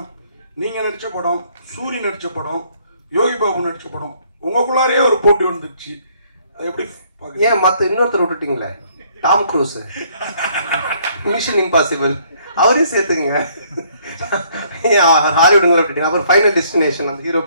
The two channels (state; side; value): inverted; both; correlation -0.64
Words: நீங்கள் நடித்த படம், சூரி நடித்த படம், யோகி பாபு நடித்த படம், உங்களுக்குள்ளாரே ஒரு போட்டி வந்துடுச்சு, அது எப்படி? ஏன் மற்ற இன்னொருத்தர் விட்டுட்டீங்களே, டாம் க்ரூஸ், மிஷன் இம்பாசிபிள், அவரே சேர்த்துக்குங்க. ஹாலிவுட்ல விட்டுட்டீங்க. அப்புறம் ஃபைனல் டெஸ்டினேஷன், அந்த ஹீரோ